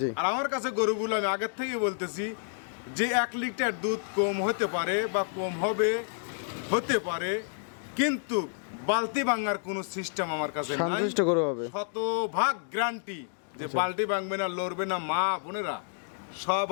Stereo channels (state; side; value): silent; right; digital silence